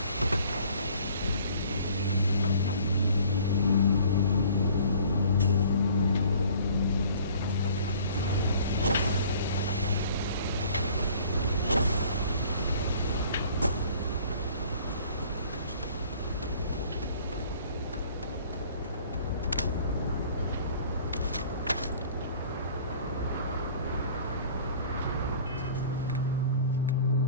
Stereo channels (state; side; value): inverted; both; correlation -0.51